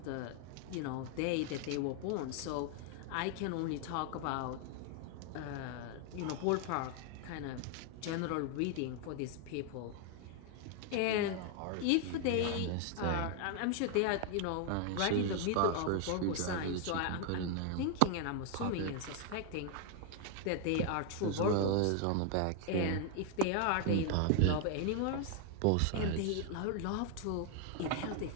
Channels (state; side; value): different; both; correlation 0.00